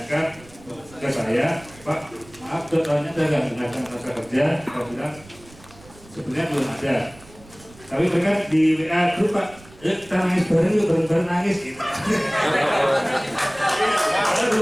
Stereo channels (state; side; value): noise; right; rumble, 23 dB below the sound